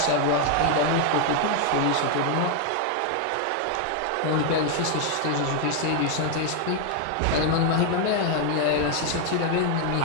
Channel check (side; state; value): both; different; correlation 0.00